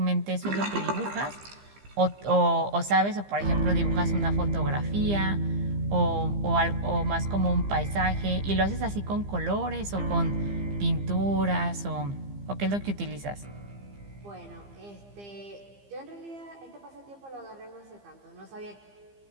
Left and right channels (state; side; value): late; left; 15 ms